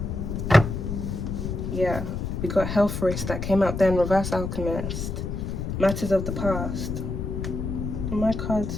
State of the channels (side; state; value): left; noise; rumble, 4 dB below the sound